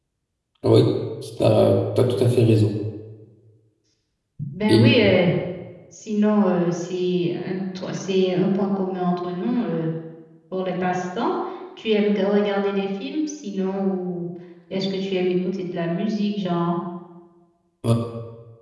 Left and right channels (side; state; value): both; identical; correlation 1.00